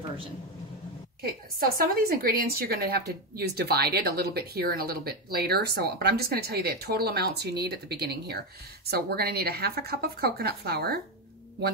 Okay, so some of these ingredients you're going to have to use divided, a little bit here and a little bit later. But I'm just going to tell you the total amounts you need at the beginning here. So we're going to need a half a cup of coconut flour,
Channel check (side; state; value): both; normal; correlation 0.10